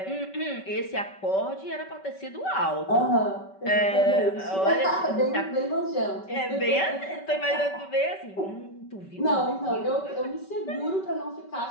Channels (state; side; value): late; right; 5.2 ms